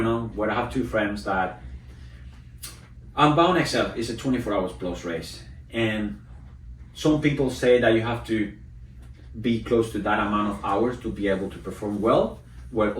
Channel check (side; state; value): both; identical; correlation 1.00